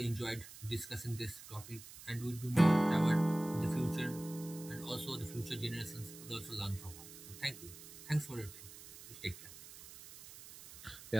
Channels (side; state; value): right; noise; hiss, 16 dB below the sound